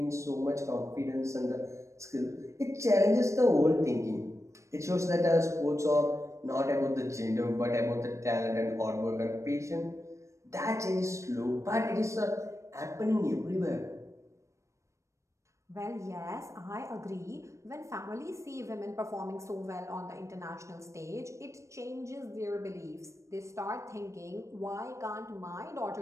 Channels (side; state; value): left; late; 0.15 ms